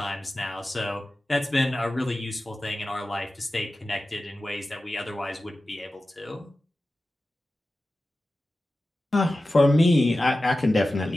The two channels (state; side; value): normal; both; correlation 0.95